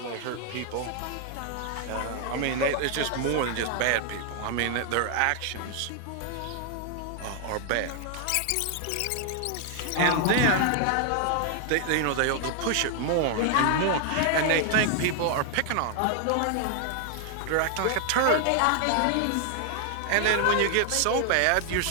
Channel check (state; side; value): different; both; correlation 0.00